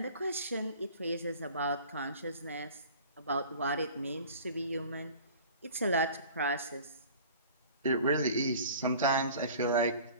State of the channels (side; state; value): both; inverted; correlation -0.44